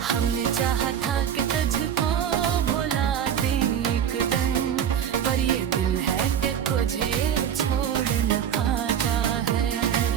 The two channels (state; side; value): quieter; left; 9.0 dB